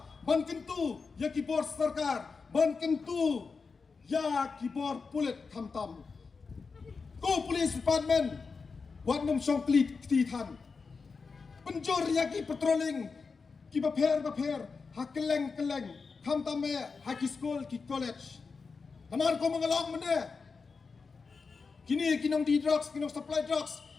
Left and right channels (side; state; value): right; quieter; 4.8 dB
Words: ban kentu ya kibor sarkar ban kentu ya kibor pulit kamtam ko police department wat num song klit titan penjor ya ki patrolling ki baper hakeleng kamtam me haki school ki college kamar ko mengalong mene kini kinong di drugs kinong supply drugs